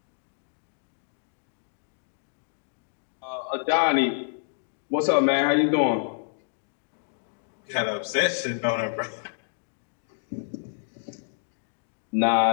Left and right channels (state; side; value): silent; right; digital silence